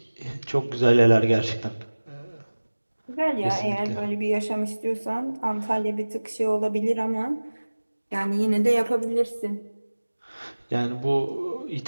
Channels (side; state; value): both; inverted; correlation -1.00